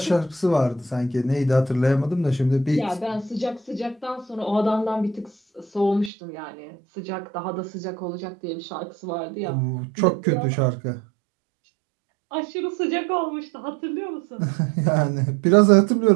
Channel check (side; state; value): left; drops out; at 6.1 s